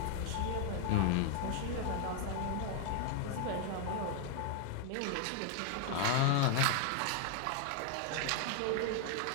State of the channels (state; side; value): different; both; correlation 0.00